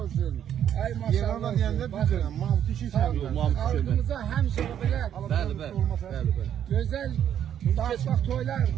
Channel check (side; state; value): left; quieter; 9.8 dB